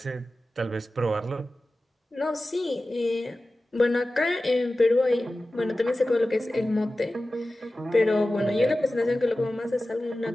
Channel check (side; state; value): both; normal; correlation 0.95